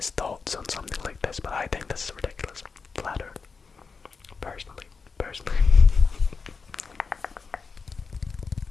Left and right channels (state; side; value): quieter; right; 4.9 dB